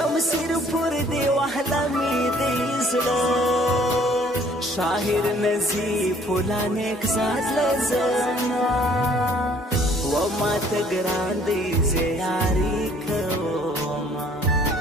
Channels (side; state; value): both; normal; correlation 0.58